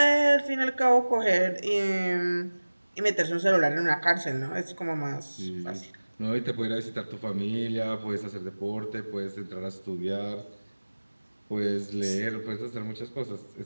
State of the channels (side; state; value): both; inverted; correlation -1.00